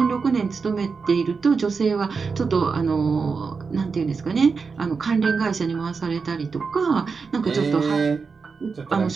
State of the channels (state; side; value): quieter; left; 5.0 dB